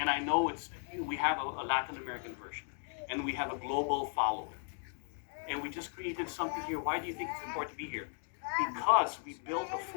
I know we have a Latin American version, and we have a global following, and we just created something here. Why do you think it's important to be here? Because we built a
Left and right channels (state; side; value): silent; right; 54 dB below the other